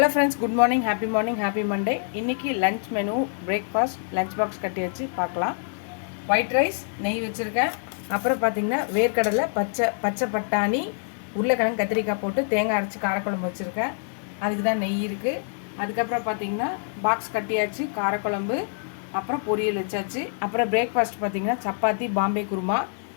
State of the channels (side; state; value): right; silent; 59 dB below the other